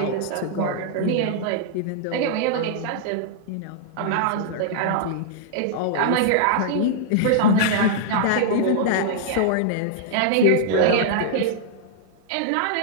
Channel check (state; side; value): different; both; correlation -0.01